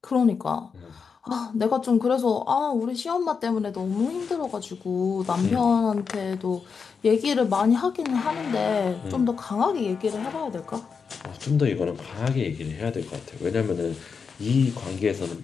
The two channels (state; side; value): quieter; right; 5.7 dB